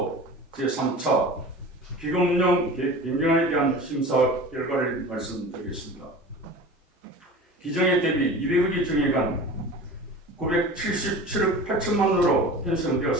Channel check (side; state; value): both; normal; correlation 0.36